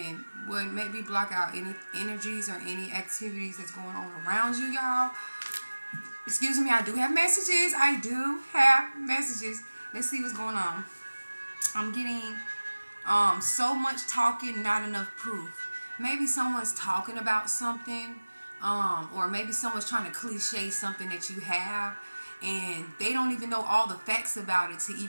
would maybe block out any energies or any activities that's going on around you, y'all. Excuse me, I do have messages. Let's see what's going on. I'm getting so much talking, not enough proof. Maybe someone's talking about something, or maybe someone's trying to cliche something that you have, and they don't even know all the facts about it to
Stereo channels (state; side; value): inverted; both; correlation -1.00